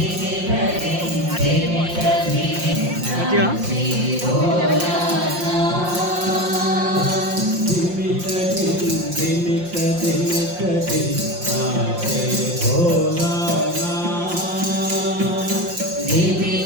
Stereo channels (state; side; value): late; left; 5.7 ms